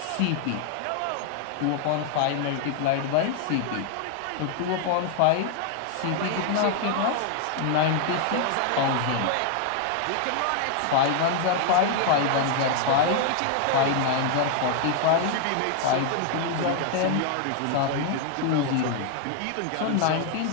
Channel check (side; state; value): both; different; correlation 0.00